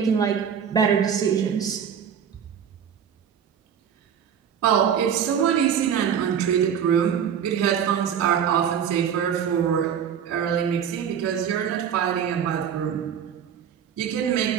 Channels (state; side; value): quieter; left; 8.2 dB